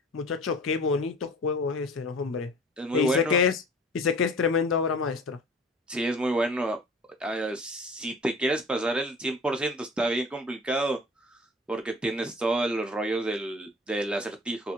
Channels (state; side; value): normal; both; correlation 0.45